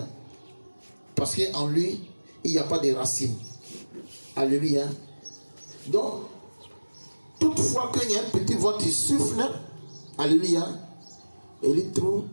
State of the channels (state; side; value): inverted; both; correlation -1.00